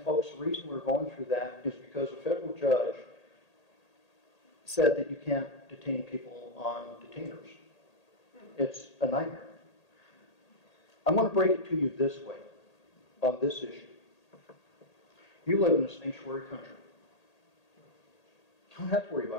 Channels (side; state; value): right; late; 1.8 ms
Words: folks, the reason we're going through that is because a federal judge said that you can't detain people on detainers. It's a nightmare. I'm going to break it to you this way on this issue. You live in a sanctuary country. You don't have to worry